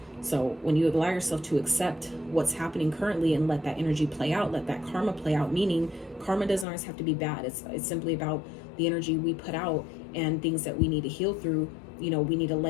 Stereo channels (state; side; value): drops out; right; at 6.7 s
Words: So when you allow yourself to accept what's happening currently and let that energy play out, let that karma play out, meaning karma doesn't always have to be bad. It's simply about the energy we put out and things that we need to heal through. We need to